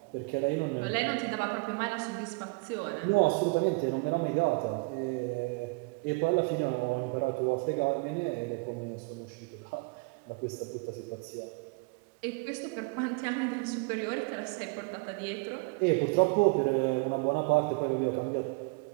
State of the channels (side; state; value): left; quieter; 30.4 dB